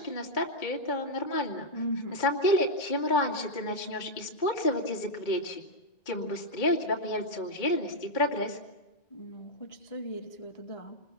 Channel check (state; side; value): late; right; 2.2 ms